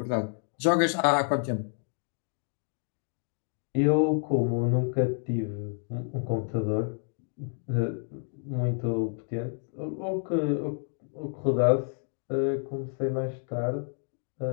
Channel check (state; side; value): silent; right; 58 dB below the other